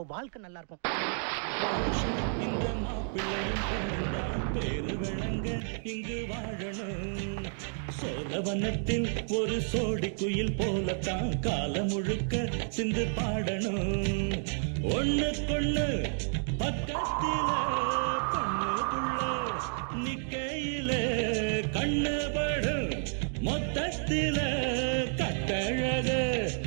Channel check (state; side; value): silent; left; 57 dB below the other